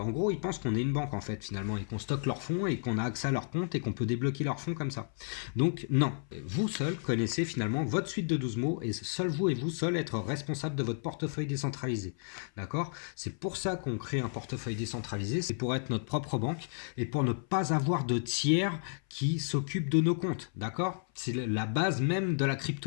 gros, ils pensent qu'on est une banque en fait finalement et qu'on stocke leurs fonds et qu'on a accès accès à leur compte et qu'on peut débloquer leurs fonds comme ça. Donc non, vous seul connaissez finalement votre suite de 12 mots et seul vous et vous seul être responsable de votre portefeuille décentralisé. D'accord? C'est pour ça qu'on crée un portefeuille décentralisé, c'est pour être notre propre banque et pour ne pas avoir de tiers qui s'occupent de nos comptes. D'accord? C'est la base même de la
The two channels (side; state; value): right; silent; 55 dB below the other